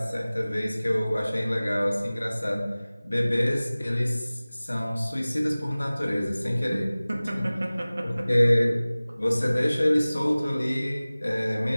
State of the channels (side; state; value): both; inverted; correlation -0.98